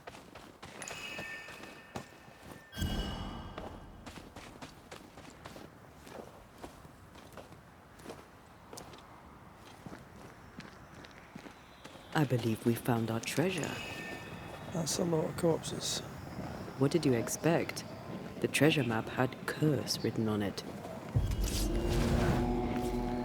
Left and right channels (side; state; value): both; identical; correlation 1.00